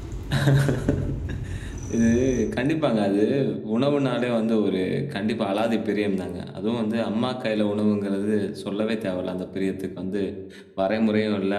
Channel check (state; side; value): identical; both; correlation 1.00